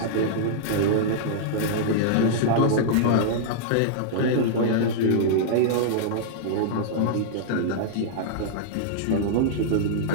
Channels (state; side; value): different; both; correlation -0.02